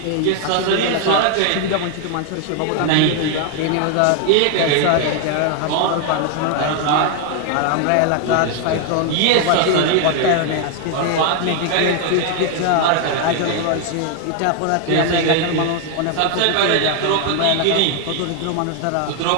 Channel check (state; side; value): different; both; correlation 0.00